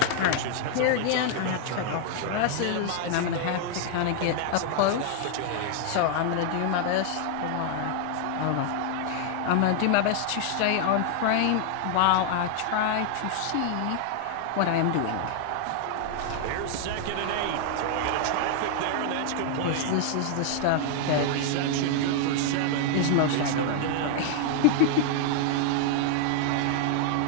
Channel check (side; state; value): both; different; correlation 0.00